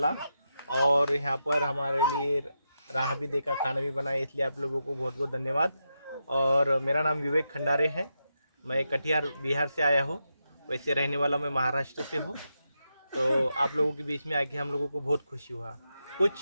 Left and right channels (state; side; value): inverted; both; correlation -0.86